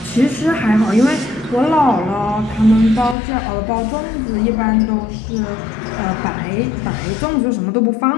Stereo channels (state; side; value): drops out; right; at 3.2 s